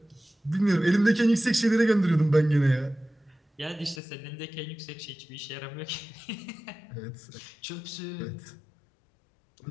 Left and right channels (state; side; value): drops out; right; at 4.0 s